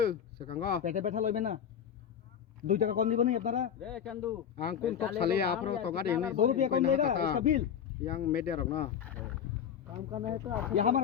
সেকাঙ্গ পেটে ব্যথা লইবে না 2 টাকা কম দিবনি আপনারা রে চান্দু আং কোন তো সালে आपरो तो गाड़ी नहीं 2 रुपया कम देगा इसका बिल yang media रख ना काम करना है तो ये हमारे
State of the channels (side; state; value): right; quieter; 8.6 dB